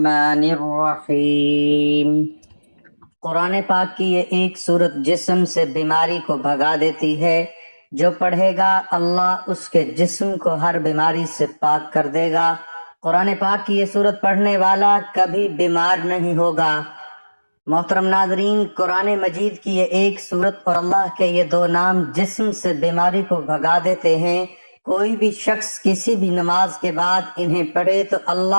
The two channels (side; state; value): both; inverted; correlation -1.00